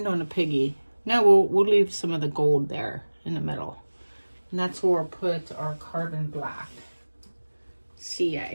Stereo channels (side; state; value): both; inverted; correlation -1.00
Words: on a piggy. No, we'll leave some of the gold there in the middle. And that's where we'll put our carbon black.